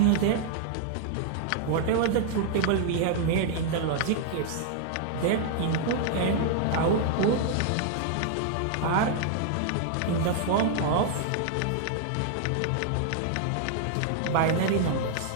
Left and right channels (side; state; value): both; different; correlation -0.01